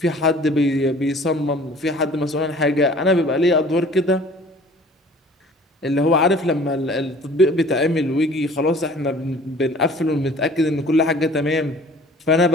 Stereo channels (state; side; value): normal; both; correlation 0.49